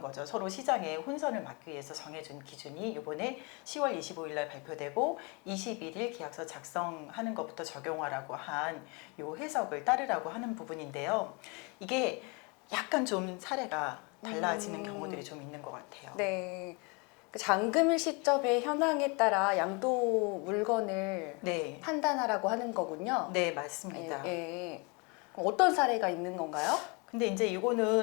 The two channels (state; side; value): quieter; right; 30.5 dB